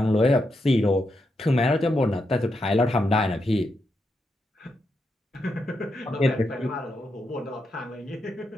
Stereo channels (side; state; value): both; normal; correlation 0.83